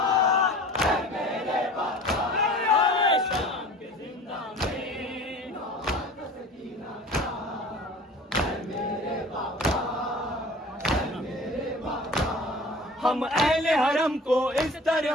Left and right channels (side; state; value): both; normal; correlation 0.42